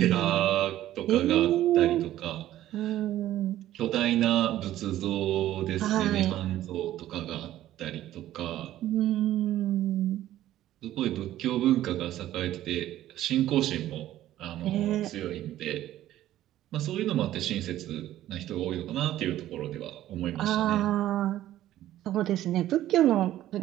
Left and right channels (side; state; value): left; quieter; 13.5 dB